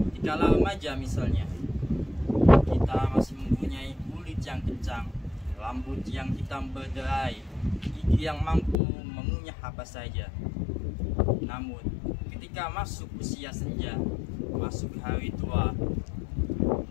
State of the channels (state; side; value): drops out; right; at 8.8 s